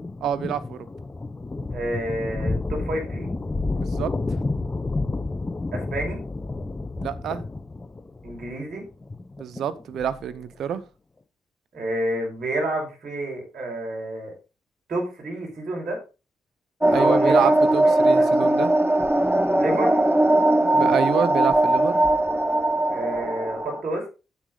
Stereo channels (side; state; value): both; normal; correlation 0.88